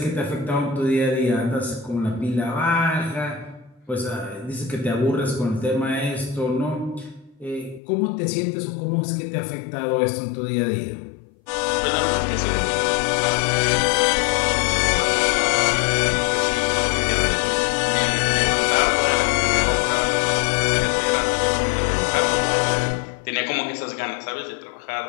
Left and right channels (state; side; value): drops out; right; at 7.8 s